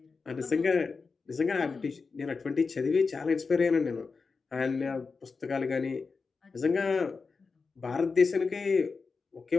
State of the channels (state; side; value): quieter; right; 4.6 dB